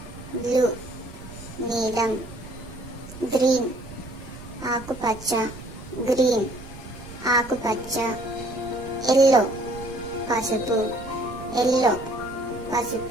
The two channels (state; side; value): noise; right; rumble, 15 dB below the sound